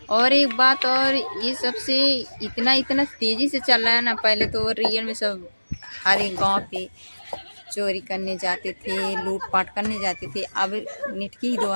और एक बात, और ये सबसे इतना इतना तेज़ी से चल रहा है ना। पहले तो रियल में सब हर एक गांव पे चोरी करने जाते थे, लूटपाट करने जाते थे, अब नेट के ही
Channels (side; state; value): both; inverted; correlation -1.00